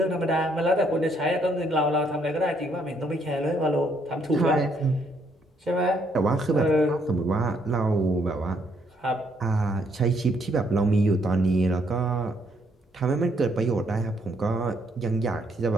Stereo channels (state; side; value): normal; both; correlation 0.71